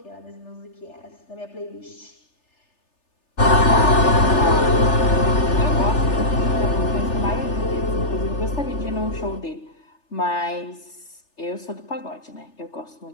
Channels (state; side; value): late; right; 3.3 ms